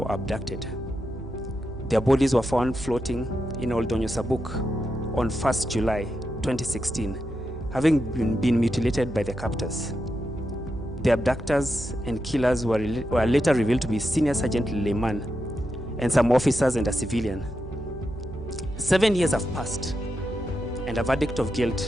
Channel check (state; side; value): noise; right; hum, 12 dB below the sound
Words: abducted. Their bodies were found floating in Old Donyo Sabuk on 1st July 2016, having been mutilated by their captors. The abductors and killers were later revealed to be Senior Sergeant Leyman and some officers and a civilian. 7 years have passed, and a verdict of